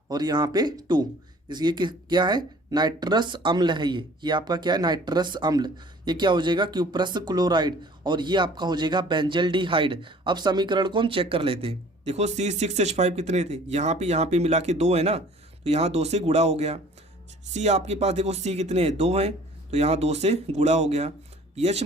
और यहाँ पे 2। ये क्या है? नाइट्रस अम्ल है। ये आपका क्या है? नाइट्रस अम्ल। ये क्या हो जाएगा? Cuprous chloride. और ये आपका हो जाएगा बेंजल्डिहाइड। अब समीकरण को हम चेक कर लेते हैं। देखो C6H5 कितने थे? यहाँ पे मिला के 2 है ना, तो यहाँ 2 से गुणा हो गया। C आपके पास देखो C कितने हैं? 2 हैं, तो यहाँ 2 से गुणा हो गया। H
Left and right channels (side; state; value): both; normal; correlation 0.51